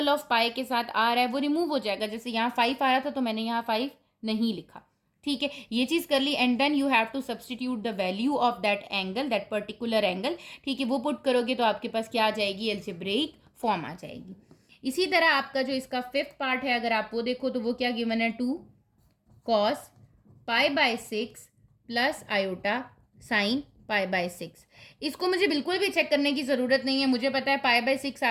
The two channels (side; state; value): both; identical; correlation 1.00